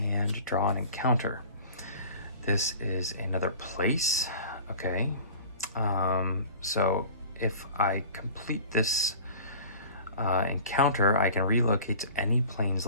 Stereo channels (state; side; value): inverted; both; correlation -0.42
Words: draw an encounter. This is another place, okay? So if I complete this encounter, I can relocate to any plains